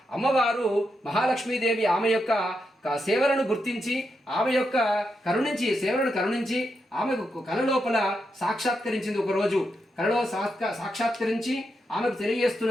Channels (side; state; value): both; normal; correlation 0.84